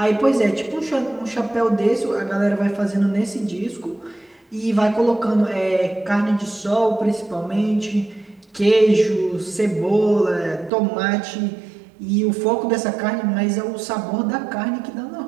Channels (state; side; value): drops out; left; at 10.7 s